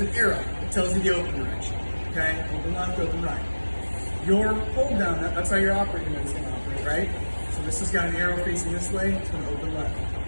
arrow that tells you the open direction. Okay, open left, open right. Your hold down nut, that's how your operating nut is going to operate, right? So this has got an arrow facing this way, it's going to open left.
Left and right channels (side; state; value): both; inverted; correlation -1.00